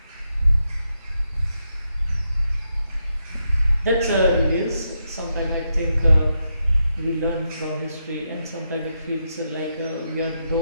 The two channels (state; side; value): inverted; both; correlation -0.83